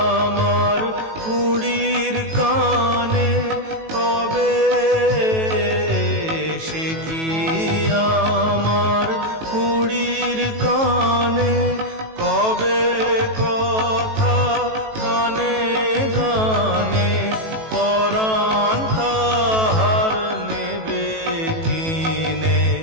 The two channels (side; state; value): left; late; 18 ms